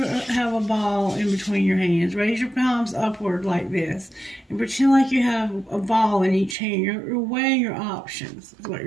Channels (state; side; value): drops out; left; at 6.6 s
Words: have a ball in between your hands. Raise your palms upward like this. And pretend like you have a ball in each hand. You're weighing your options, is what